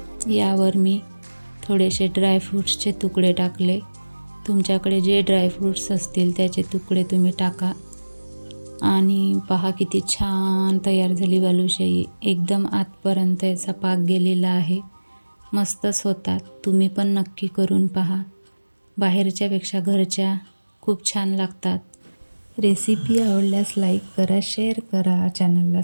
यावर मी थोडेसे ड्रायफ्रूट्सचे तुकडे टाकले. तुमच्याकडे जे ड्रायफ्रूट्स असतील त्याचे तुकडे तुम्ही टाका. आणि पहा किती छान तयार झाली बालुशाही. एकदम आतपर्यंत याचा पाक गेलेला आहे. मस्तच होतात. तुम्ही पण नक्की करून पहा. बाहेरच्यापेक्षा घरच्या खूप छान लागतात. रेसिपी आवडल्यास लाईक करा, शेअर करा, चॅनलला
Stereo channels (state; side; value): inverted; both; correlation -1.00